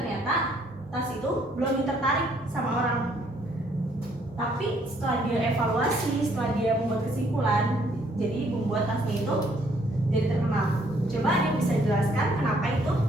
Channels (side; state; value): both; normal; correlation 0.66